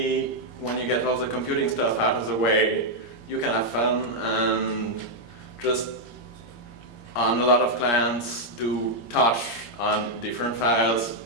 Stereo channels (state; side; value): late; right; 17 ms